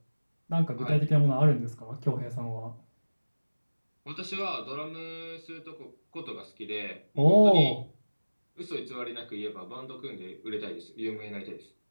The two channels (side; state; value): both; inverted; correlation -1.00